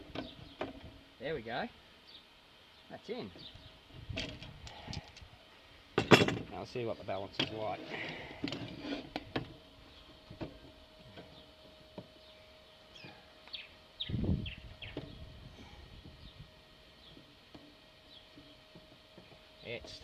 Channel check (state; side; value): identical; both; correlation 1.00